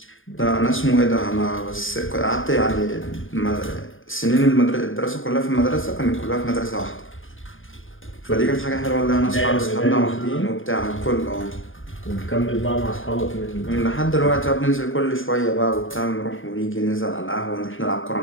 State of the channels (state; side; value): late; right; 0.58 ms